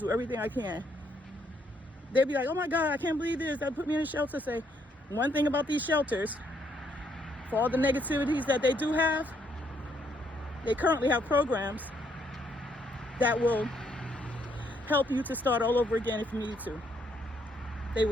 everything I can. They'll be like, oh my God, I can't believe this. They put me in a shelter. Say, one thing about these shelters, for all the negativities that they do have, they currently have programs that will help you to start all over again if you need to.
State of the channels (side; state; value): both; normal; correlation 0.72